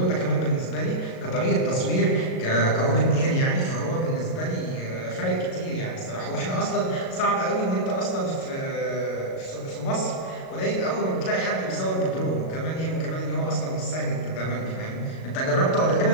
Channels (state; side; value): late; right; 37 ms